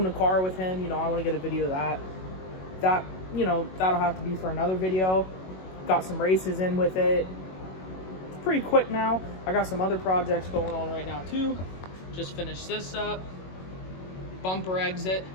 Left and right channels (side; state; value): right; late; 21 ms